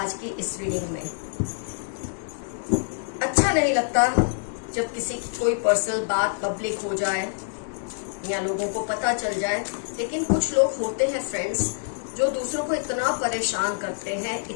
की इस रीडिंग में। अच्छा नहीं लगता जब किसी की कोई पर्सनल बात पब्लिक हो जाए या लोगों को पता चल जाए, लेकिन कुछ लोग होते हैं फ्रेंड्स जो दूसरों को इतना परेशान करते हैं,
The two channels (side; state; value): right; silent; digital silence